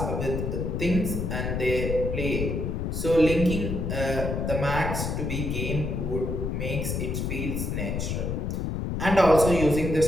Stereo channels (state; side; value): noise; left; rumble, 2 dB below the sound